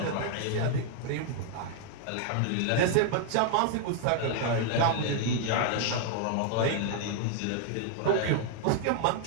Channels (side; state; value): both; different; correlation 0.00